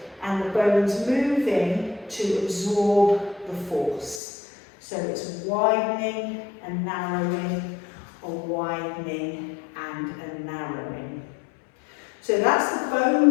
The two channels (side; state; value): right; drops out; at 4.2 s